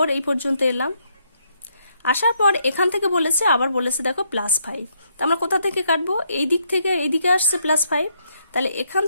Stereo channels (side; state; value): both; inverted; correlation -0.74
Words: এই পর্যন্ত এলাম, আসার পর এখান থেকে বলেছে, আবার বলেছে দেখো +5, তা আমরা কোথা থেকে কাটবো, এই দিক থেকে এই দিকে আসছে +5, তাহলে এখান